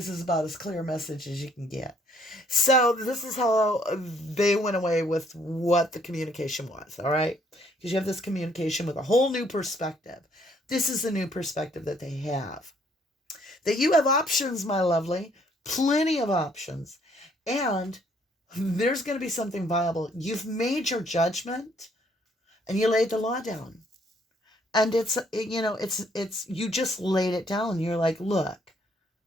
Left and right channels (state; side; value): normal; both; correlation 0.65